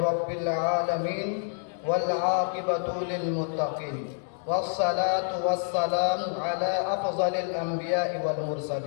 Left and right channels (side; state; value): right; silent; digital silence